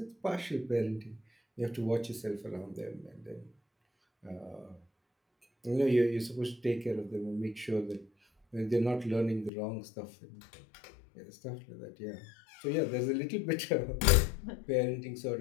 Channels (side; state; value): right; drops out; at 9.5 s